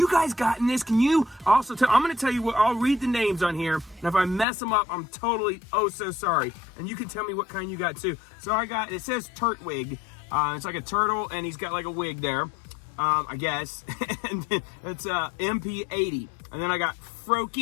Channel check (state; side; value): drops out; right; at 4.5 s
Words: guys gotten this? Can you also tell? I'm going to tell you what. I'll read the names on here, and if I mess them up, I'm totally so sorry. And you can tell me what kind you got too. So I got. It says Turtwig. It's like a turtle, and he's got like a wig there, I guess. And then it's MP80. And then I got